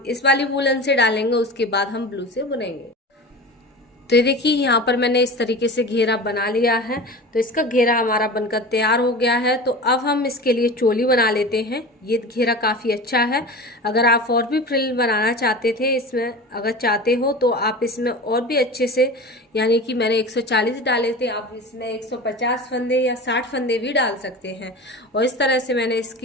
इस वाली वूलन से डालेंगे, उसके बाद हम ब्लू से बुनेंगे। तो ये देखिए यहाँ पर मैंने इस तरीके से घेरा बना लिया है। तो इसका घेरा हमारा बनकर तैयार हो गया है। तो अब हम इसके लिए चोली बना लेते हैं। ये घेरा काफ़ी अच्छा है। अगर आप और भी फ्रिल बनाना चाहते थे इसमें, अगर चाहते हो तो आप इसमें और भी अच्छे से, यानी कि मैंने 140 डाले थे, आप इसमें 150 फंदे या 60 फंदे भी डाल सकते हैं। और इस तरह से मैंने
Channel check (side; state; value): both; normal; correlation 0.32